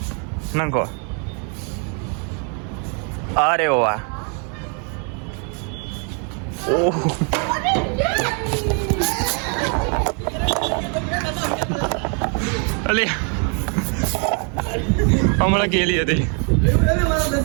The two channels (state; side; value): quieter; left; 38.7 dB